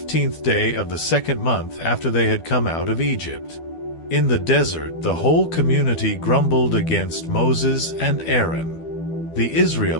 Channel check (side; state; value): right; late; 12 ms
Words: day of the second month after they had come out of Egypt. In the desert, the whole community grumbled against Moses and Aaron. The